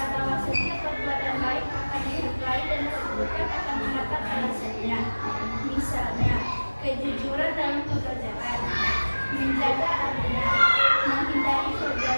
bahwa setiap perbuatan baik akan dinilai dan keburukan akan mendapat balasannya. Misalnya, kejujuran dalam pekerjaan, menjaga amanah, menghindari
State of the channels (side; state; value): both; inverted; correlation -1.00